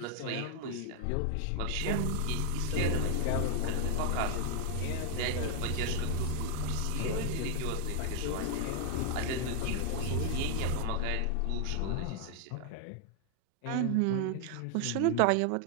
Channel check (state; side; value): different; both; correlation 0.00